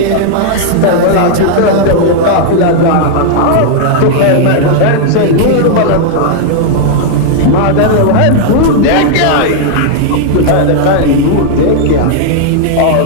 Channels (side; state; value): both; different; correlation -0.01